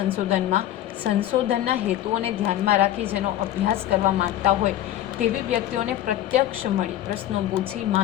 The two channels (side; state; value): right; quieter; 12.7 dB